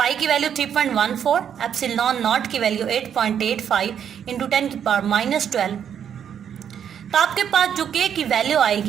की वैल्यू 3.14, एप्सिलॉन नॉट की वैल्यू 8.85 इंटू 10 की पावर -12, तो आपके पास जो के की वैल्यू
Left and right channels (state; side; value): quieter; left; 8.7 dB